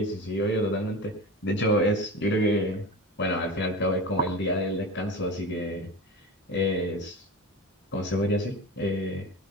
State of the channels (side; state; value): both; normal; correlation 0.29